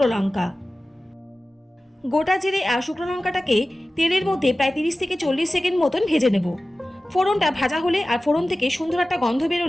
লঙ্কা। গোটা জিরে আর শুকনো লঙ্কাটাকে তেলের মধ্যে প্রায় 30 থেকে 40 সেকেন্ড মতন ভেজে নেব। ফোড়নটা ভাজা হলে আর ফোড়ন থেকে সুন্দর একটা গন্ধ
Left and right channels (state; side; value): normal; both; correlation 0.96